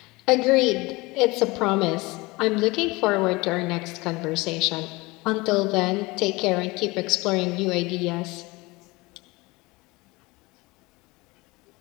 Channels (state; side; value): quieter; right; 23.1 dB